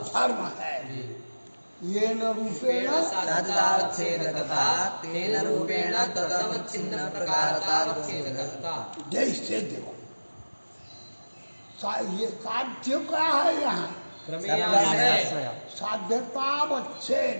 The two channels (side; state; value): both; inverted; correlation -1.00